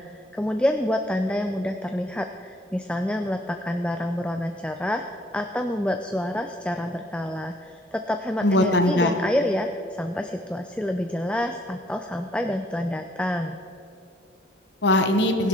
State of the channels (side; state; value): both; normal; correlation 0.63